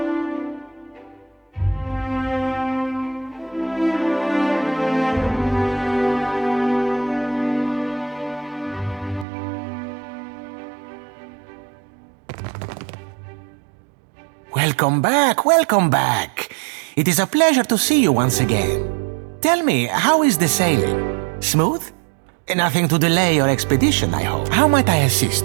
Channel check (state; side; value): drops out; left; at 9.2 s